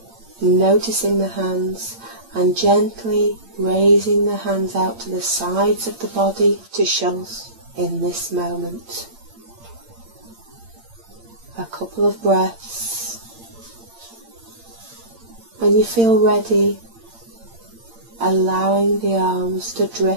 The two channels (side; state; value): left; late; 8.8 ms